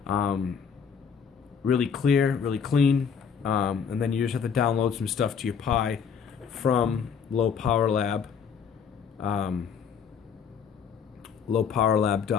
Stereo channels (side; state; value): right; quieter; 6.8 dB